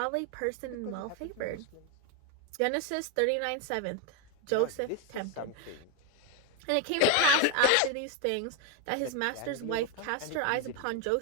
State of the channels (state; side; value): different; both; correlation 0.02